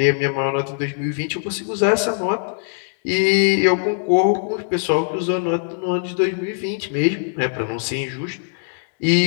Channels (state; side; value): silent; right; 65 dB below the other